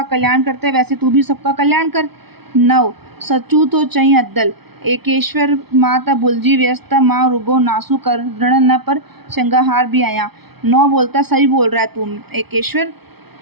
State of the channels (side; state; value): left; late; 0.97 ms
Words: कल्याण करते हैं, वैसे तू भी सबका कल्याण कर। 9 सचू तो चईं अदल, एकेश्वर मां त भुलिजी वियसि त मां रुगो नासू करण न पर श्रृंगार भी आहियां। 9 बोलता सही बोल रहा है तू एकेश्वर,